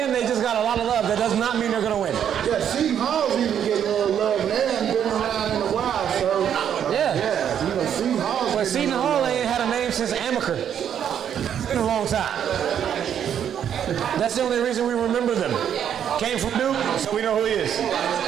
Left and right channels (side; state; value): left; quieter; 9.0 dB